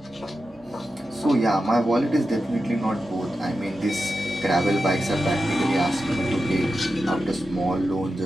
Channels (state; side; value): normal; both; correlation 0.90